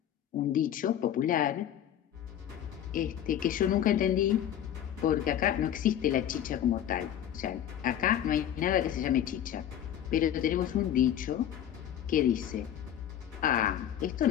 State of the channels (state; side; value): quieter; right; 10.5 dB